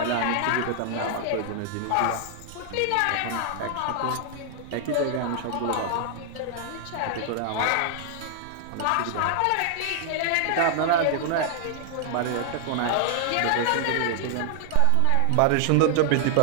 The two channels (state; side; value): different; both; correlation 0.00